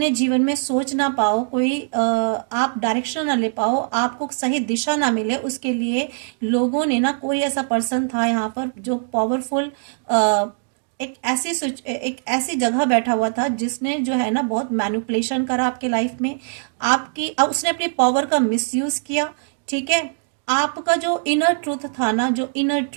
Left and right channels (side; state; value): left; silent; 63 dB below the other